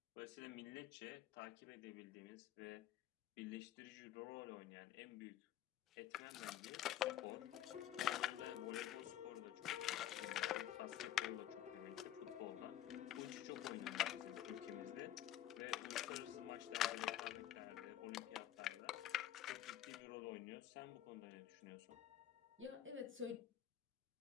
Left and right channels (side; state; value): right; quieter; 12.1 dB